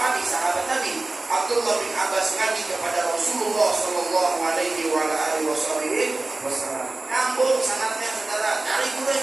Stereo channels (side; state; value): left; quieter; 3.1 dB